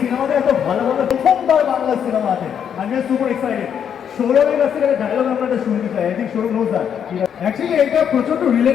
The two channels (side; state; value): right; quieter; 8.3 dB